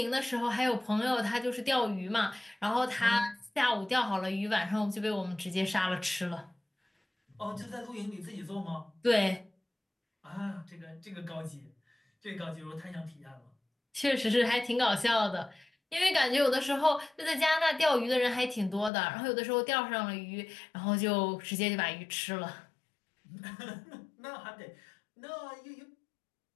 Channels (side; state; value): right; drops out; at 18.9 s